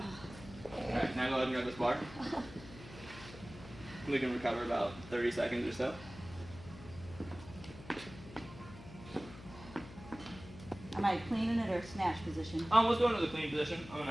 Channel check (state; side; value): noise; left; hum, 16 dB below the sound